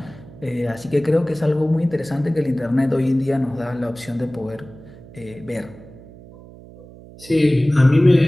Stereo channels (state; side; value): noise; right; hum, 20 dB below the sound